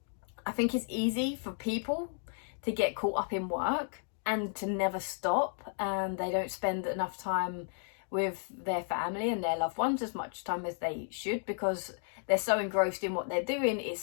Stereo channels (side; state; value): right; silent; 56 dB below the other